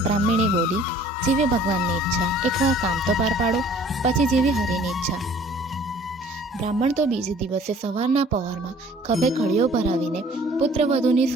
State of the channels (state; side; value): normal; both; correlation 0.53